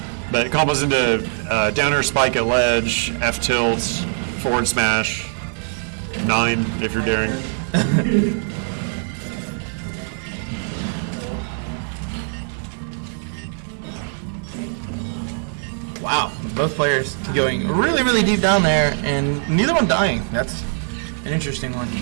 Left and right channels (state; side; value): silent; left; 64 dB below the other